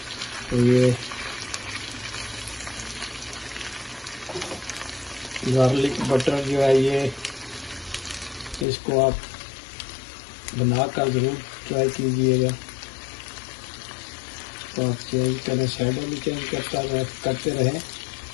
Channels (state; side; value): drops out; right; at 8.7 s